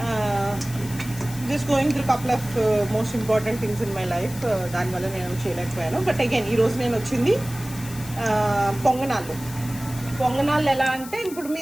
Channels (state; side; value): noise; left; hiss, 15 dB below the sound